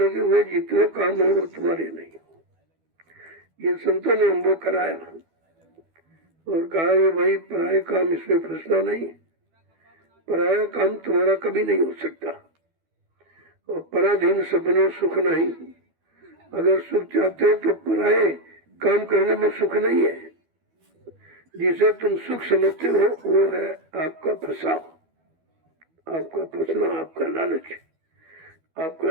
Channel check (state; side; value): late; left; 12 ms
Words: हुए जितने काम है वो तुम्हारे नहीं। ये संतों ने हमको कराया और कहा ये भाई पराया काम, इसमें फंसना नहीं, पराया काम तुम्हारा कभी नहीं हो सकता। और पराधीन सपने सुख नहीं, अगर सुख चाहते हो तो पराये काम करने में सुख नहीं है। जिसे तुम सुख समझते हो वो है आपका फंसाव, आपका फंसना, आपका लालच,